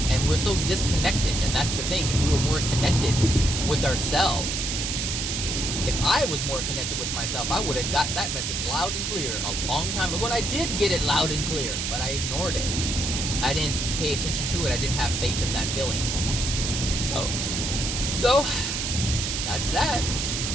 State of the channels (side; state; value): right; noise; hiss, 2 dB below the sound